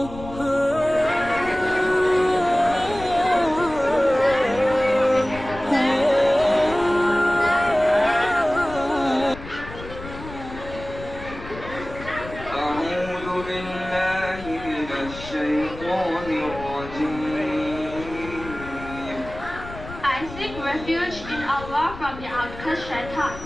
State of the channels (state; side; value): noise; left; rumble, 13 dB below the sound